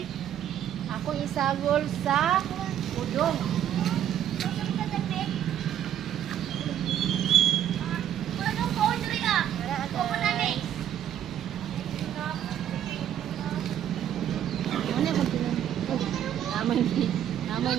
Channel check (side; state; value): left; quieter; 10.5 dB